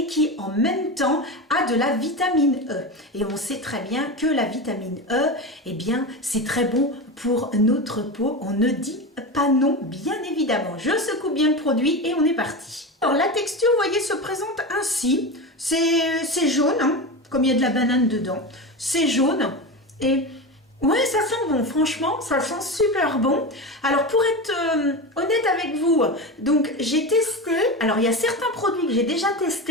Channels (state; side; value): normal; both; correlation 0.22